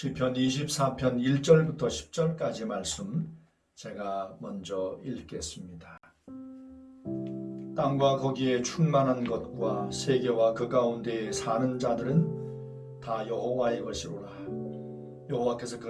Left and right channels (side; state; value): both; identical; correlation 1.00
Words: 24편 1절부터 10절까지 말씀 제가 먼저 읽겠습니다. 땅과 거기에 충만한 것과 세계와 그 가운데에 사는 자들은 다 여호와의 것이로라. 여호와께서